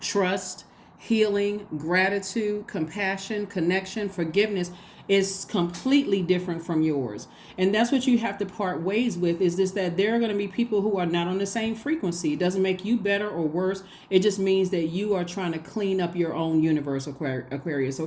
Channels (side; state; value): both; identical; correlation 1.00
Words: healing, gratitude, compassion, connection, forgiveness is completely different from yours. And that's what you have to part ways with, is this, that there are going to be people who are not on the same frequency. It doesn't make you better or worse. It just means that you are trying to clean up your own universe, Aquarius,